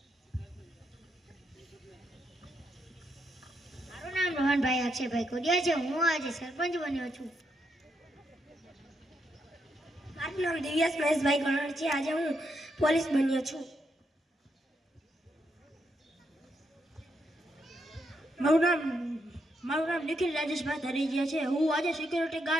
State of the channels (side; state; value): both; normal; correlation 0.80